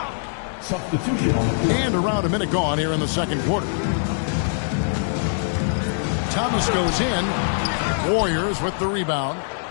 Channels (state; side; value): silent; right; digital silence